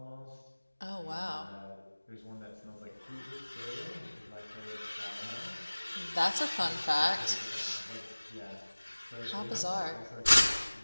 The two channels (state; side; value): inverted; both; correlation -1.00